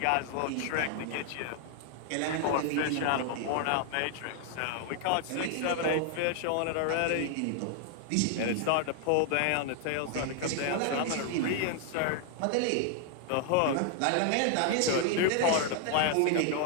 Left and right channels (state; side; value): different; both; correlation 0.00